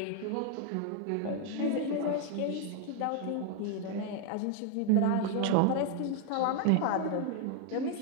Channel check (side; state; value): both; different; correlation 0.00